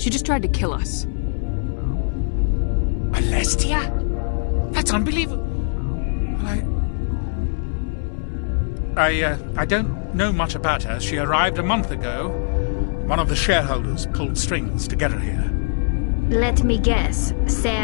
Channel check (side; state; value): right; silent; digital silence